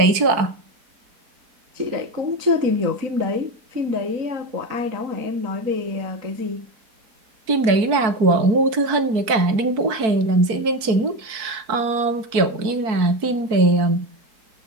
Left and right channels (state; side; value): late; left; 4.6 ms